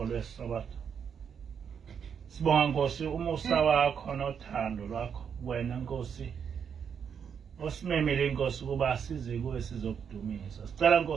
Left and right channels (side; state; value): left; quieter; 7.3 dB